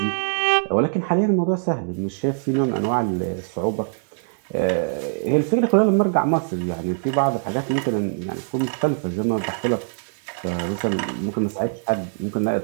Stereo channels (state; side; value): silent; left; digital silence